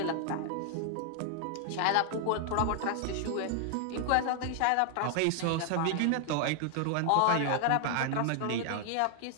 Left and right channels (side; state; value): both; different; correlation 0.00